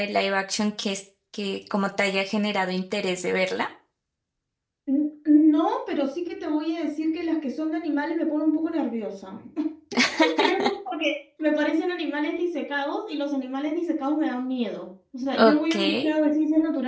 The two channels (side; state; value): both; identical; correlation 1.00